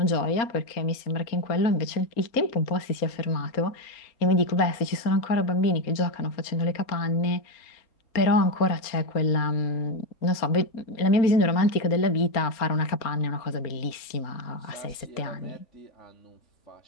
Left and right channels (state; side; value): late; right; 4.3 ms